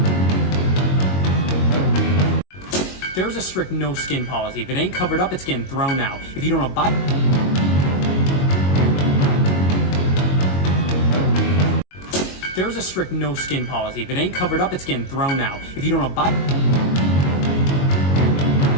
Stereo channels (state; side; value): late; right; 22 ms